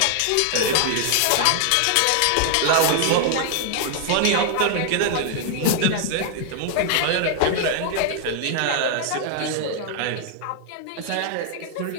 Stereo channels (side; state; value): both; different; correlation 0.00